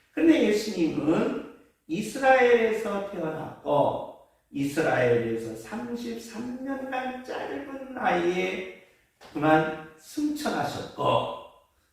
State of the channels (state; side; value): identical; both; correlation 1.00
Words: 근데 예수님은 이스라엘에서 태어났고 이스라엘에서 33년간 짧은 나이에 그만 승천하셨고,